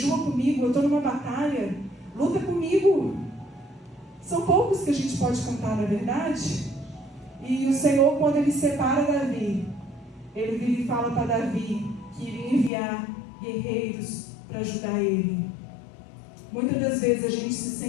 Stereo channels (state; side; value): drops out; right; at 12.7 s